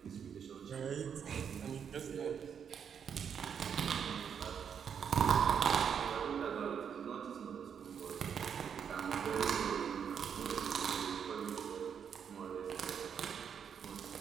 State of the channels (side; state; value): left; quieter; 7.5 dB